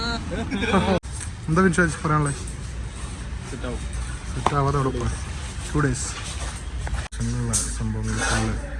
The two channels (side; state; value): both; identical; correlation 1.00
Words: എന്താ വിശ്വാസം പറയാനുള്ളത്? സെറ്റ് ആവാതെ ഉറപ്പ് 2 days സംഭവങ്ങൾ ഫുള്ള്